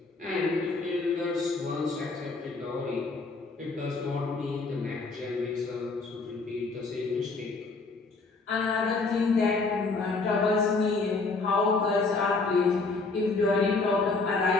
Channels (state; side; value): quieter; right; 3.9 dB